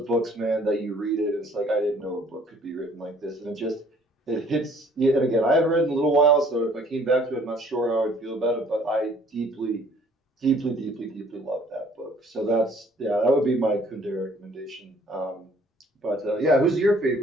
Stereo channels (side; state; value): both; normal; correlation 0.58